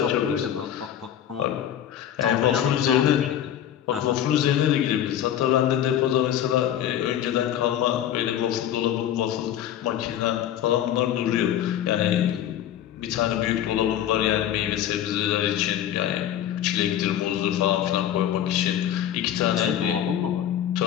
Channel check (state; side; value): quieter; right; 10.8 dB